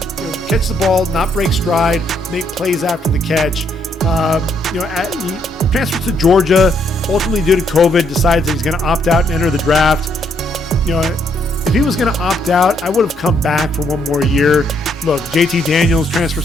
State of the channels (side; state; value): both; normal; correlation 0.72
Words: catch the ball, not break stride, make plays after the catch. He transfers to Georgia, ultimately due to COVID, decides that he's going to opt out and enter the draft. If he was going to opt out, I would have come back for one more year. Look, JT Daniels